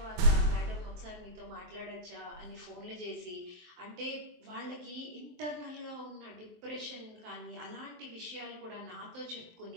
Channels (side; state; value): left; late; 23 ms